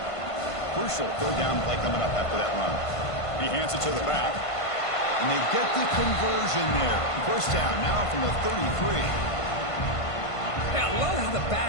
Crucial third down play coming up after that run. He hands it to the back, and they get the conversion there. First down now from the 33. Yeah, I love how the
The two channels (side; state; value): right; late; 1.5 ms